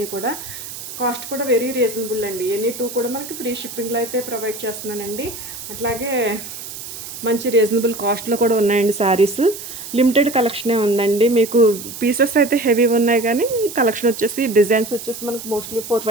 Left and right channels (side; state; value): right; noise; hiss, 11 dB below the sound